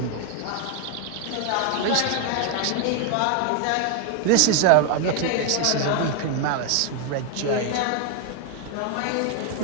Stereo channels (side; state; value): both; different; correlation 0.01